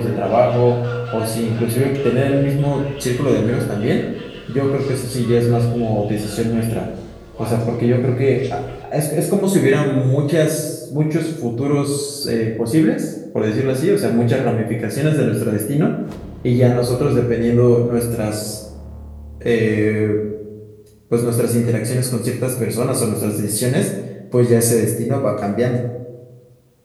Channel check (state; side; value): identical; both; correlation 1.00